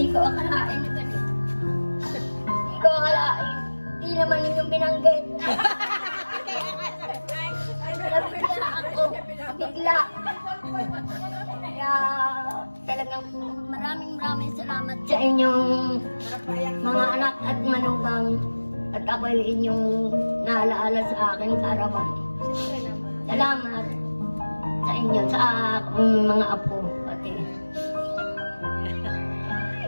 ko akalain na ganito. Hindi ko akalain. Hindi naman ninyong binanggit. Nabigla ako. Bigla. Kaya talagang maraming salamat sa inyong mga anak at manugang. At ako'y inyong naalaala sa akin kaarawan. Salamat sa inyo, sa akong mga apo. Pati.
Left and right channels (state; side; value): inverted; both; correlation -1.00